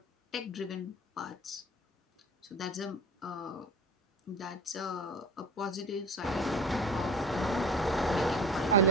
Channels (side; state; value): both; normal; correlation 0.37